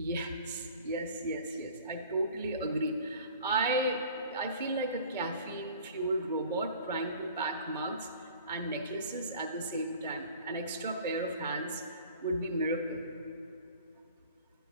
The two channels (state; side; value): inverted; both; correlation -0.46